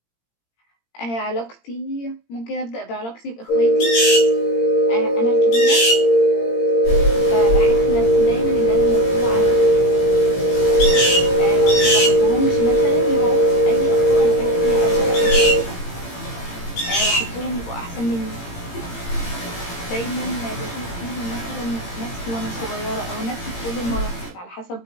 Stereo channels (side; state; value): right; late; 17 ms